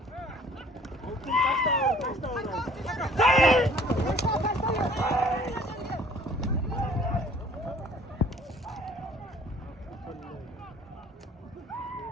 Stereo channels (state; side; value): normal; both; correlation 0.53